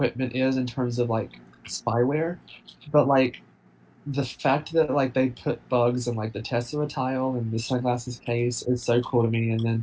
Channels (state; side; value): identical; both; correlation 1.00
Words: is in terms of like spyware, but like the fact that like they put bugs in like the Tesla tile and the sunglasses case is so cool to me. And